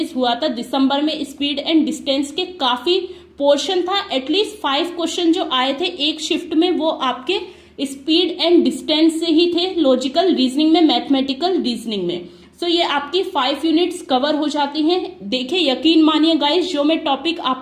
हुआ था। दिसंबर में स्पीड एंड डिस्टेंस के काफी पोर्शन था। एटलीस्ट 5 क्वेश्चन जो आए थे एक शिफ्ट में वो आपके स्पीड एंड डिस्टेंस से ही थे, लॉजिकल रीजनिंग में, मैथमेटिकल रीजनिंग में। सो ये आपकी 5 यूनिट्स कवर हो जाती हैं। देखिए यकीन मानिए गाइस, जो मैं टॉपिक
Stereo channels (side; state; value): both; identical; correlation 1.00